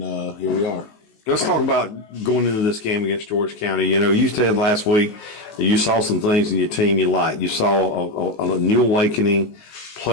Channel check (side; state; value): right; late; 19 ms